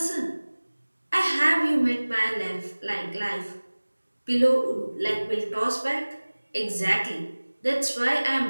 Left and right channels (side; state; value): both; inverted; correlation -1.00